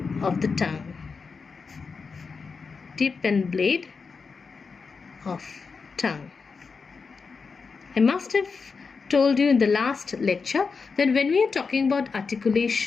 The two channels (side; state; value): right; quieter; 5.0 dB